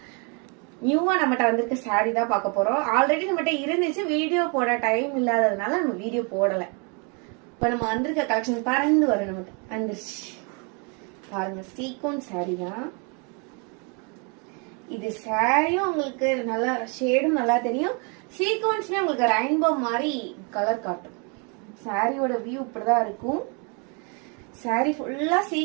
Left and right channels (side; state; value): left; quieter; 35.0 dB